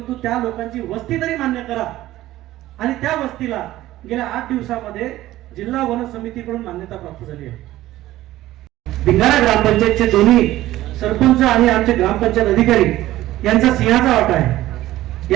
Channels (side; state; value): left; quieter; 15.4 dB